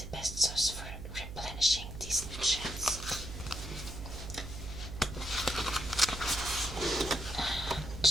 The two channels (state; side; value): noise; right; hum, 9 dB below the sound